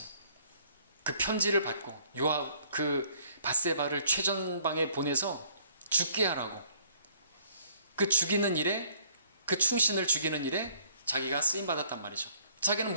그 편지를 받고 요압 그 밧세바를 최전방에 보내서 죽게 하라고, 그 죽이는 일에, 그 충신을 죽이는 일에 자기가 쓰임 받았단 말이죠. 자기는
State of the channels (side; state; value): both; inverted; correlation -0.60